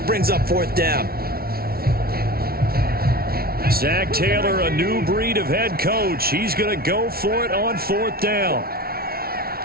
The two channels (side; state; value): left; late; 0.44 ms